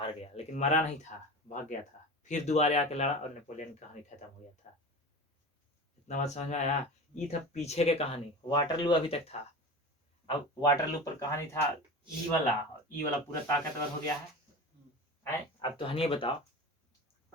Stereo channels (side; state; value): both; normal; correlation 0.31